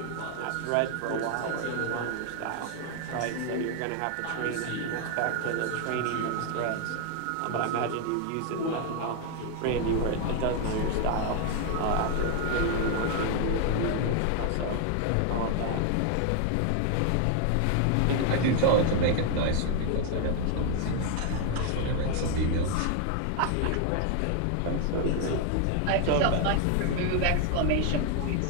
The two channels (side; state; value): both; different; correlation 0.01